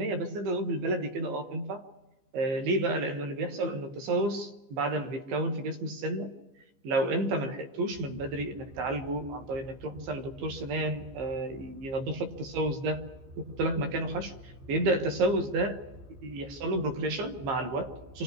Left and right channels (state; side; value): late; left; 15 ms